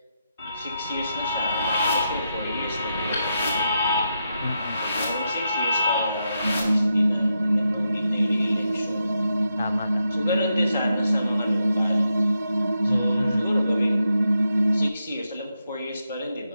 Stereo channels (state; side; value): inverted; both; correlation -0.85